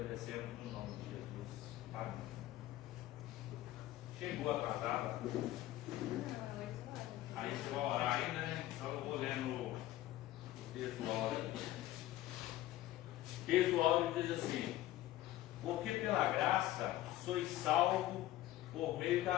no nome de Jesus. Amém. Chegou atrasada? Aí você vai orar ainda, né? Então eu vou lendo o texto do áudio. O texto do áudio diz assim: porque pela graça sois salvos por meio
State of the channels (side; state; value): right; quieter; 14.9 dB